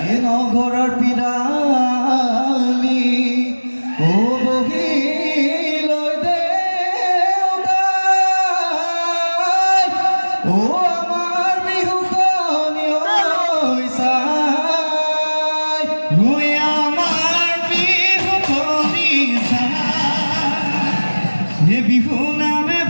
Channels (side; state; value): both; inverted; correlation -1.00